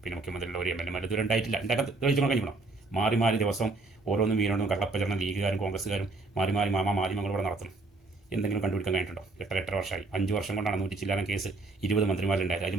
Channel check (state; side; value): quieter; left; 3.4 dB